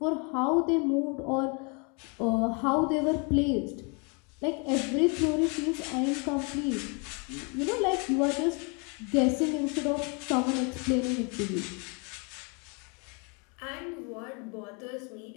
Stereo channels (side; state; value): right; quieter; 34.2 dB